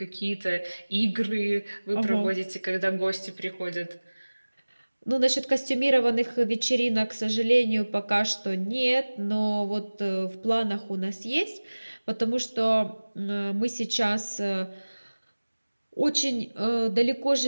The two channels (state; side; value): inverted; both; correlation -1.00